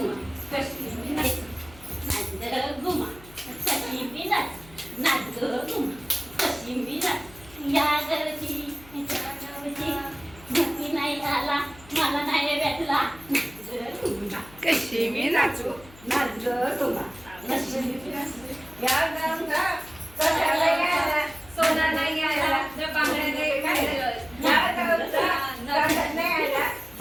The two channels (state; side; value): noise; left; hum, 22 dB below the sound